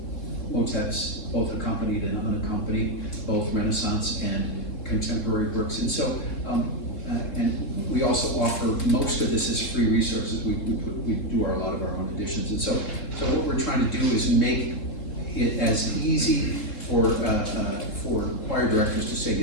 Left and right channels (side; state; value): right; late; 3.7 ms